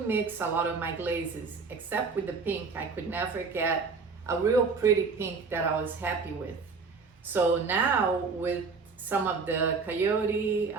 mix a lot of my glazes, except with the pink. I could never get a real pretty pink that I was happy with. So now with some of the Coyote,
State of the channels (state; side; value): quieter; left; 4.8 dB